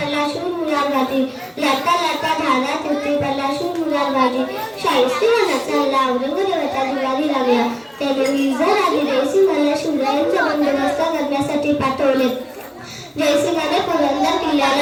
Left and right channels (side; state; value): both; identical; correlation 1.00